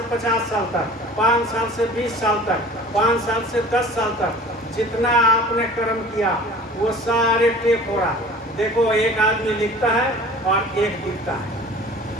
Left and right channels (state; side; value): normal; both; correlation 0.44